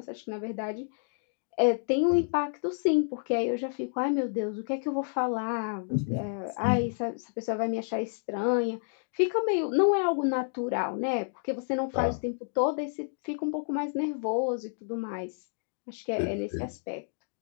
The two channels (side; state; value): right; silent; digital silence